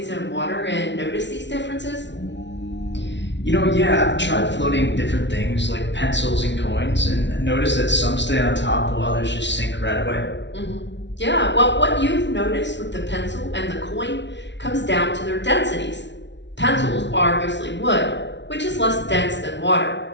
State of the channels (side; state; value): right; late; 0.51 ms